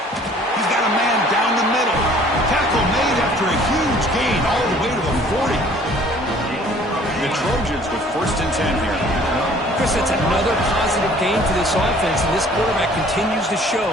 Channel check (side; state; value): both; normal; correlation 0.54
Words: He's got a man down the middle. Tackle made after a huge gain all the way to the 40. The Trojans with first and 10 here. Chris, that's another positive gain for this offense, and this quarterback continues to show